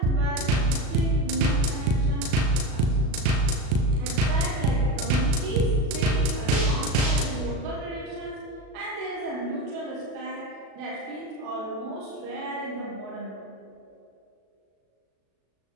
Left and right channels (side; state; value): left; late; 36 ms